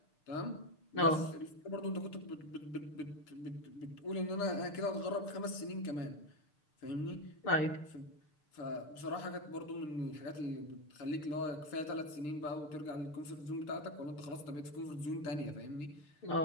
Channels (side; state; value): right; late; 6.7 ms